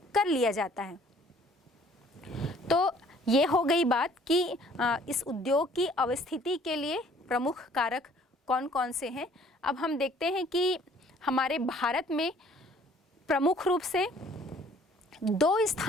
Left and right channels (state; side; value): normal; both; correlation 0.56